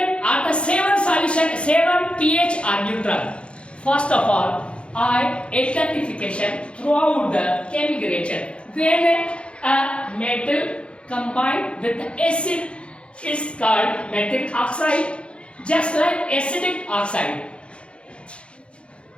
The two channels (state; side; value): late; right; 0.058 ms